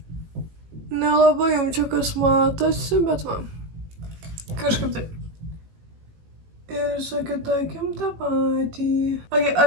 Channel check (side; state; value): left; late; 18 ms